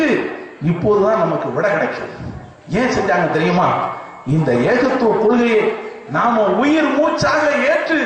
இப்போதுதான் நமக்கு விட கிடைக்கும். ஏன் செஞ்சாங்க தெரியுமா? இந்த ஏகத்துவ கொள்கையை நாம உயிர் மூச்சாக ஏற்று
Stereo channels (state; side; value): identical; both; correlation 1.00